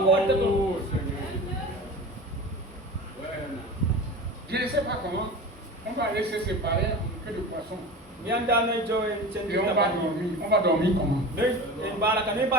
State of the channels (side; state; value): both; normal; correlation 0.32